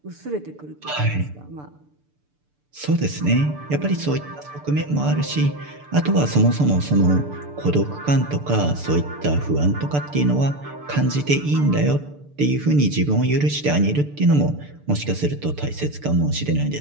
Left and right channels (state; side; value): late; left; 6.8 ms